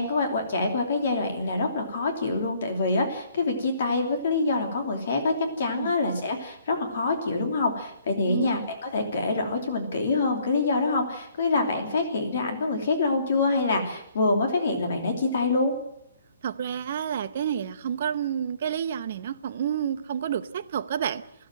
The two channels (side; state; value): both; inverted; correlation -0.62